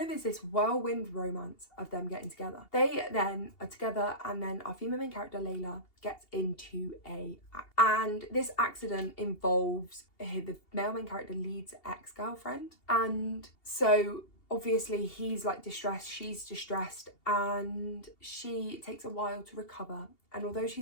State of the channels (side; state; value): right; late; 2.8 ms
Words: of is this whirlwind romance of them getting together. They then are together, and then our female main character Layla gets into and this accident involves the male main character Lead's ex-girlfriend, and so obviously he's like distressed, she's distressed, and she takes a while to recover. And although